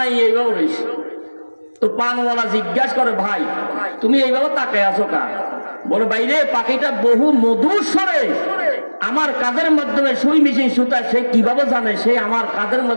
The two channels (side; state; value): both; inverted; correlation -1.00